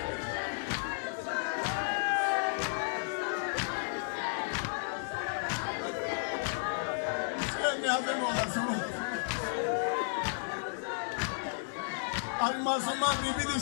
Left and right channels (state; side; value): silent; right; digital silence